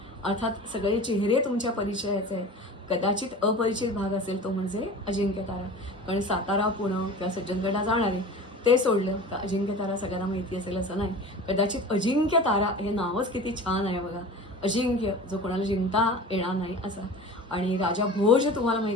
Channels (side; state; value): both; normal; correlation 0.37